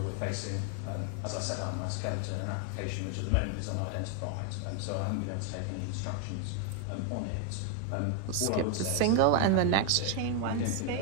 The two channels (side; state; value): both; different; correlation 0.01